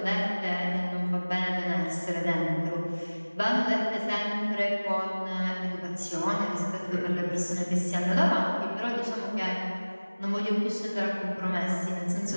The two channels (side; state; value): both; inverted; correlation -1.00